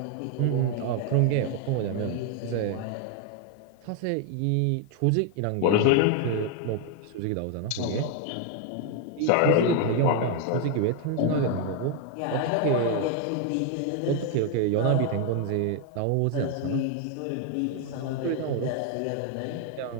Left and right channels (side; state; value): both; different; correlation 0.01